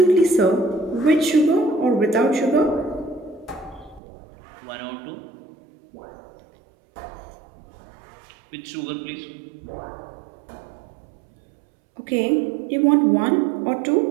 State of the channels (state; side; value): drops out; left; at 4.0 s